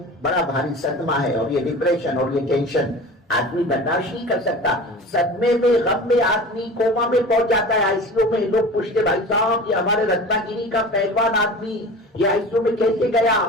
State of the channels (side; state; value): both; normal; correlation 0.36